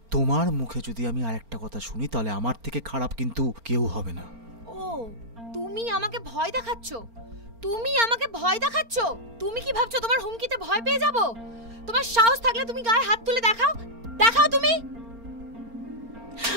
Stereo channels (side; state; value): left; late; 4.4 ms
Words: তোমার মুখে যদি আমি আরেকটা কথা শুনি তাহলে আমার থেকে খারাপ কিন্তু কেউ হবে না। ও, তুমি আমাকে ভয় দেখাচ্ছ? তুমি আমাকে ভয় দেখাচ্ছ? তুমি কি ভাবছো তোমার হুমকিতে ভয় পেয়ে যাব? তোমার সাহস থাকলে তুমি গায়ে হাত তুলে দেখাও, দেখাও তুমি।